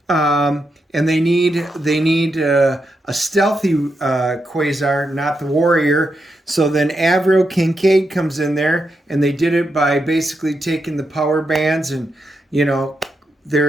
And they need a stealthy Quasar, not the warrior. So then Avril Kincaid comes in there, and they did it by basically taking the power bands and,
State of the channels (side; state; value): both; normal; correlation 0.84